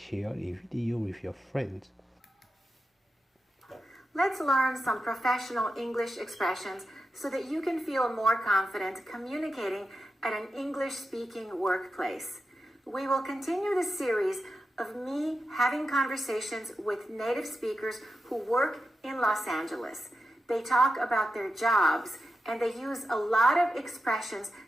the video with your friends. Let's learn some professional English expressions so that you can feel more confident communicating at an English-speaking workplace. We will continue the series of me having conversations with native speakers who work in Los Angeles. They talk about their jobs and they use a lot of expressions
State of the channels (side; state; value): both; normal; correlation 0.90